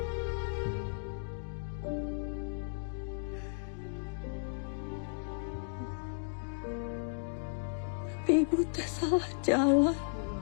Tapi ibu teh salah jalan. Kula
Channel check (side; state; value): right; silent; digital silence